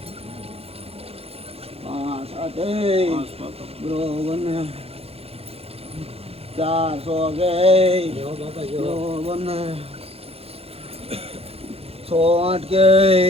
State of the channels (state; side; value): late; left; 0.29 ms